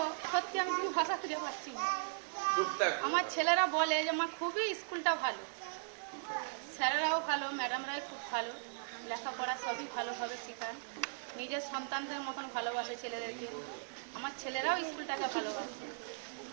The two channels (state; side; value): silent; left; digital silence